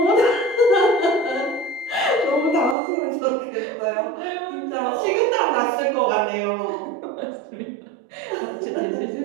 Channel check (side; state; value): left; drops out; at 2.8 s